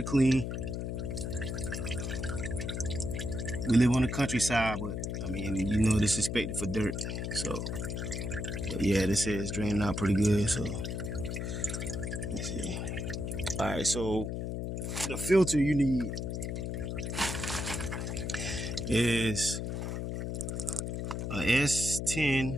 clean. We live on the countryside, but I mean, this is expected for dirt. So, but yeah, this is draining out pretty good. So let's see. All right, so the filter you need is a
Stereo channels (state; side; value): noise; left; hum, 3 dB below the sound